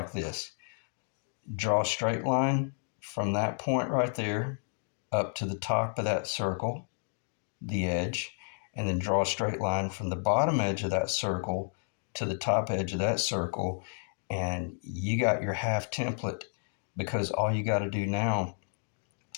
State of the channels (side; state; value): right; silent; 57 dB below the other